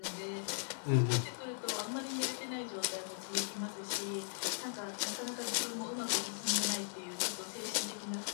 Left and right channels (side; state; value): right; silent; 52 dB below the other